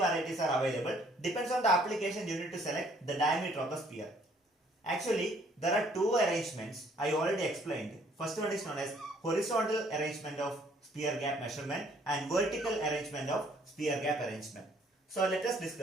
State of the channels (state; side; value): normal; both; correlation 0.62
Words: are available. Depends on the application, you need to select the diameter of the spear. Actually, there are two arrangements I already explained. First one is known as horizontal arrangement of spear gap measurement and vertical arrangement of spear gap arrangement. So let us